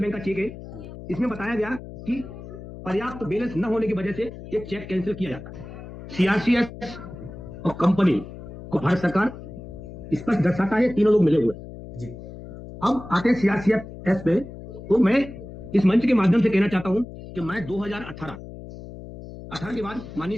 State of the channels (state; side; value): noise; left; hum, 13 dB below the sound